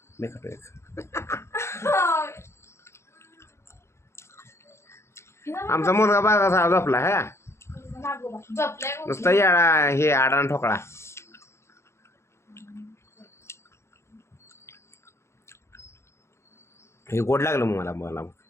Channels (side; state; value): right; late; 0.13 ms